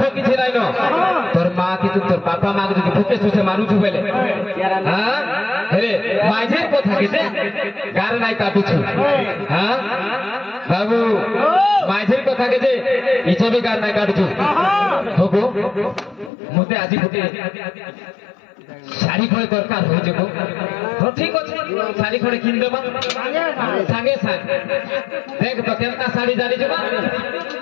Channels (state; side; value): drops out; right; at 16.3 s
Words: কিছু নাই ন তোর মা কি তোর বাপা মা কে যদি ভুকে সুসে মারুছু বেলে হ্যাঁ হেরে মাঝের কথা কেতে গার নাই কাটুছু হ্যাঁ বাবু মাঝের কথা কেতে ইচ্ছে বি গার নাই কাটুছু হবো মতে আজি গোটে শাড়ি খড়ে দরকার হয়ে যাব তো ঠিক আছে শাড়ি খড়ে কিন দেবা সাঙ্গে সাঙ্গে দেখ তো কেনটা শাড়ি জানি যাবা